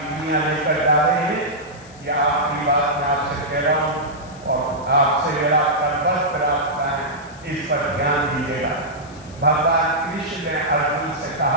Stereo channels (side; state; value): left; noise; hiss, 24 dB below the sound